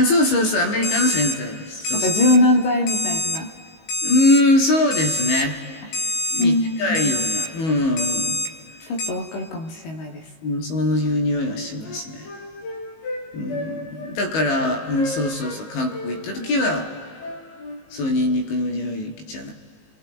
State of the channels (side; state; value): right; late; 19 ms